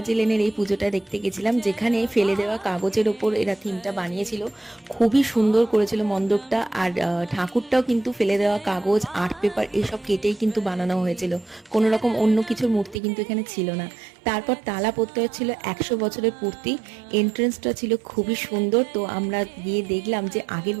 লেনের এই পুজোটা দেখতে গেছিলাম, যেখানে ফেলে দেওয়া কাগজের ওপর এরা থিমটা বানিয়েছিল। খুবই সুন্দর করেছিল মণ্ডপটা। আর ঠাকুরটাও কিন্তু ফেলে দেওয়া কাগজ, আর্ট পেপার এসব কেটেই কিন্তু বানানো হয়েছিল। কোনো রকম অন্য কিছুর মূর্তি কিন্তু এখানে ছিল না। তারপর তালা প্রত্যয় ছিল 100 বছরের পূর্তি। এন্ট্রেন্সটা ছিল খুবই সুন্দর। তো আমরা গিয়ে দেখলাম যে আগের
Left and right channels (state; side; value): drops out; left; at 13.0 s